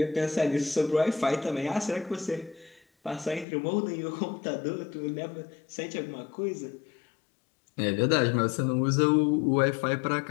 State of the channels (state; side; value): drops out; right; at 3.5 s